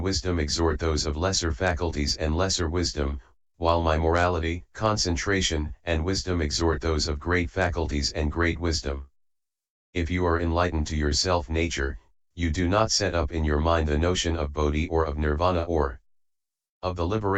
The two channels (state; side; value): identical; both; correlation 1.00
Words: wisdom exhort those of lesser faculties and lesser wisdom, while my morality, concentration, and wisdom exhort those of great faculties and great wisdom. If you are enlightened to your self-nature, you do not set up in your mind the notion of bodhi or of nirvana or of the